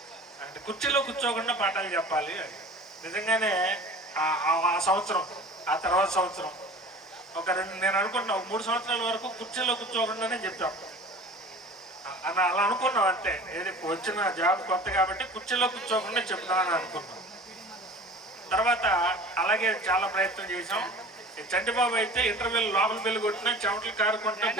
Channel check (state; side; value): normal; both; correlation 0.41